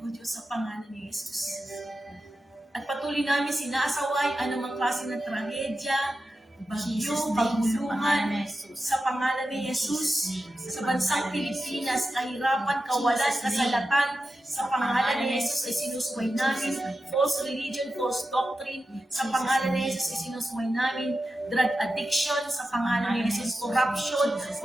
O Diyos, sa pangalan ni Jesus. At patuloy namin sinasaway anumang klase ng trahedya, bagyo, paguluhan, sa pangalan ni Jesus, sa bansang Pilipinas, kahirapan, kawalan, kasalatan, sa pangalan ni Jesus ay sinusuway namin, false religion, false doctrine, sa pangalan ni Jesus ay sinusuway namin, drug addiction, sa pangalan ni Jesus, corruption,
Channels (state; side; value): normal; both; correlation 0.91